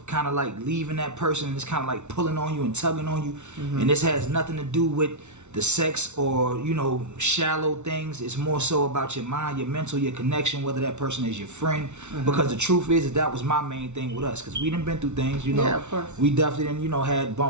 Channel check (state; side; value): late; left; 0.82 ms